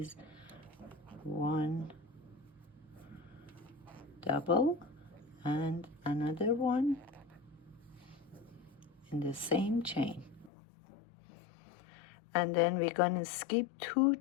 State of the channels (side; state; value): right; drops out; at 10.5 s